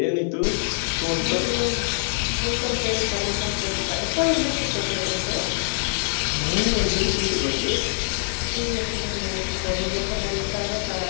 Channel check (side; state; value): right; silent; digital silence